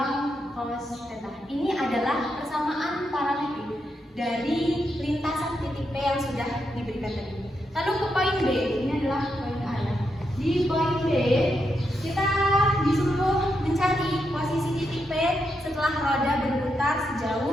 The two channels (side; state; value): both; normal; correlation 0.83